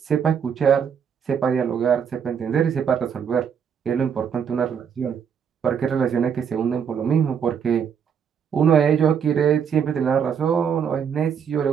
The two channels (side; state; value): left; quieter; 7.4 dB